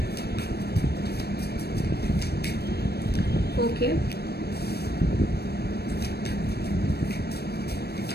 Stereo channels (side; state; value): right; late; 0.47 ms